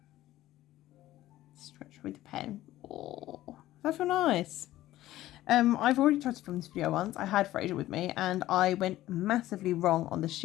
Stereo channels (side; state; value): right; quieter; 15.0 dB